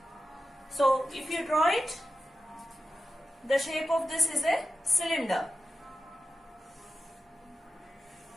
So if you draw it, the shape of this is a cylinder.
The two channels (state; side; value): normal; both; correlation 0.91